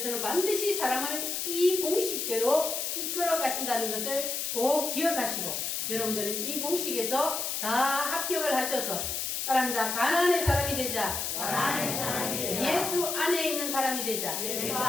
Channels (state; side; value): noise; left; hiss, 2 dB below the sound